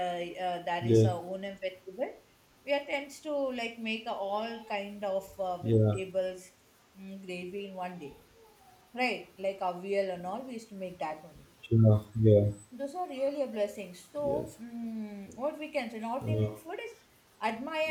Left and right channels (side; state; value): both; identical; correlation 1.00